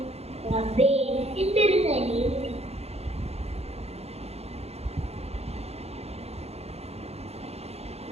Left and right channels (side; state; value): left; late; 0.30 ms